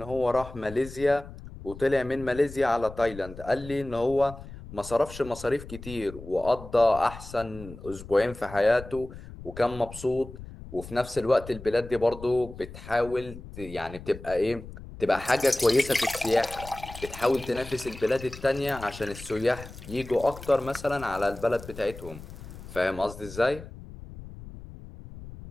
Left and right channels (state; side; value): noise; left; rumble, 14 dB below the sound